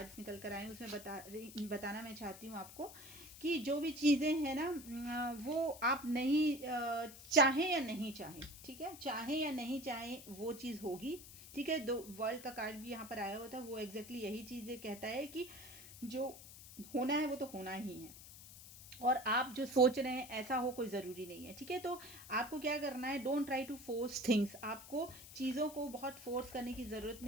निकल कर आए उसमें बताना मैं चाहती हूँ आपको कि जो भी चीज़ें हैं ना वो आप नहीं चाहें या नहीं चाहें, ठीक है, चाहें या नहीं चाहें वो चीज़ होगी, ठीक है। दो वर्ल्ड का कार्ड भी यहाँ पर आया होता है, वो एग्जैक्टली यही चीज़ें कहता है कि जो होना है वो तो होना ही है, और आप जो सोच रहे हैं ऐसा हो कोई ज़रूरी नहीं है, ठीक है। तो आपको क्या करना है, don't try to force things. आपको चीज़ों को बहुत फोर्स करने की ज़रूरत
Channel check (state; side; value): noise; left; hiss, 16 dB below the sound